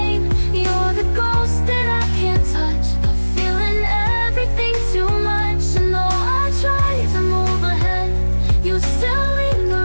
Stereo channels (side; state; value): both; inverted; correlation -1.00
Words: You're the ghost that I can't touch, but feeling everything too much. And though I try to move ahead, you still